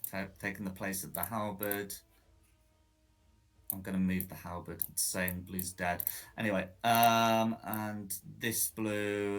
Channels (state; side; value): identical; both; correlation 1.00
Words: place of the halberd. I'm going to move the halberd. It's saying blue's dead. Anyway, and this